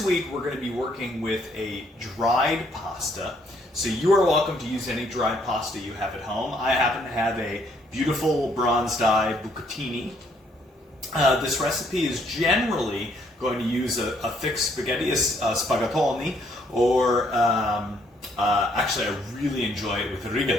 week we're going to be working with a dried pasta. So you are welcome to use any dried pasta you have at home. I happen to have a beautiful bronze dye bucatini. This recipe is generally going to use a thick spaghetti, a spaghettoni, or actually I really enjoy it with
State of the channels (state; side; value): normal; both; correlation 0.68